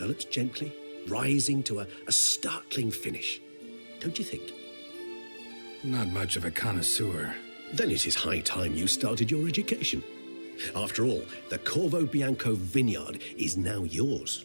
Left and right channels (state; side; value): inverted; both; correlation -1.00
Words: gently, rising to a startling finish. Don't you think? Not much of a connoisseur. Then it is high time you started your education. After all, the Corvo Bianco vineyard is now yours.